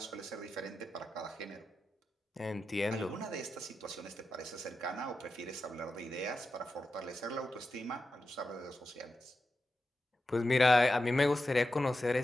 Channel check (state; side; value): normal; both; correlation 0.90